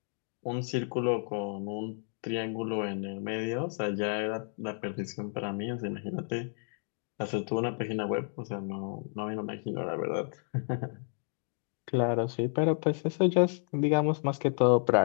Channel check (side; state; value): right; silent; 57 dB below the other